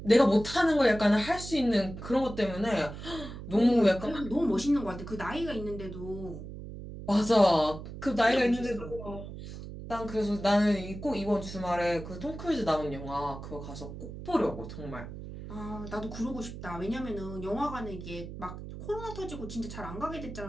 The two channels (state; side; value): noise; right; hum, 11 dB below the sound